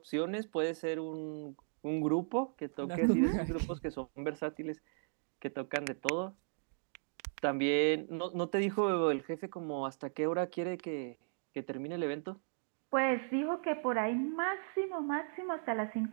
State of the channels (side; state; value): left; silent; digital silence